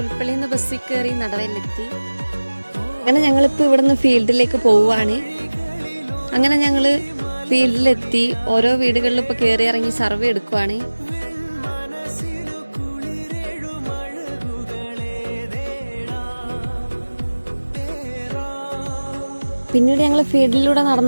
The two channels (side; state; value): both; inverted; correlation -1.00